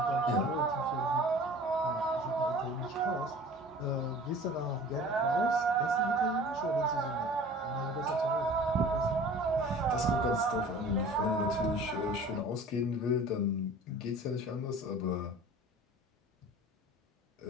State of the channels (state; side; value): normal; both; correlation 0.44